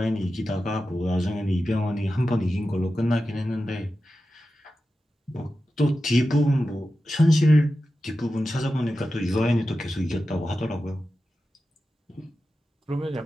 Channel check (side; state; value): both; normal; correlation 0.92